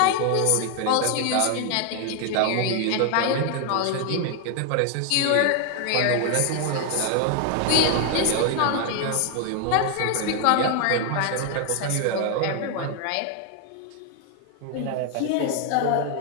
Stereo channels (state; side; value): different; both; correlation 0.00